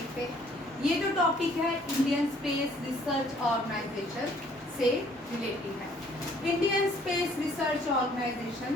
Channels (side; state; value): both; normal; correlation 0.60